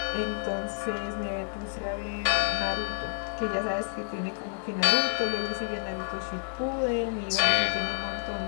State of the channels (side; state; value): right; silent; 58 dB below the other